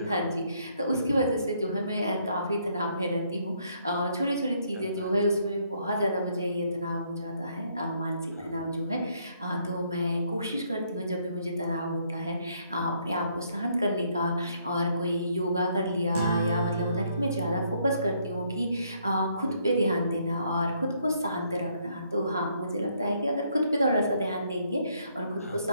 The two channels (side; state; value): both; inverted; correlation -0.70